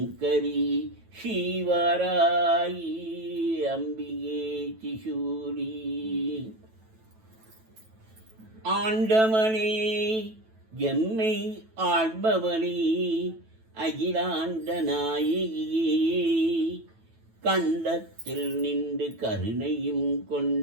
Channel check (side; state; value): left; late; 9.1 ms